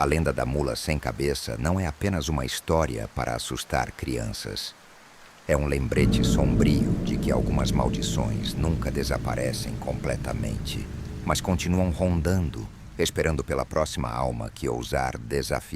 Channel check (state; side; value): identical; both; correlation 1.00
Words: lenda da mula sem cabeça não é apenas uma história para assustar crianças. É um lembrete sombrio de que algumas maldições nunca desaparecem completamente, mas continuam rondando, esperando pela próxima alma que ousar